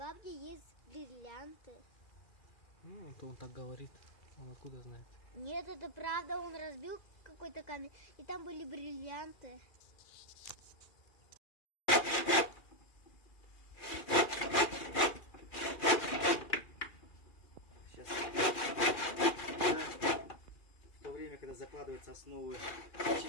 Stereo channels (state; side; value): late; right; 2.4 ms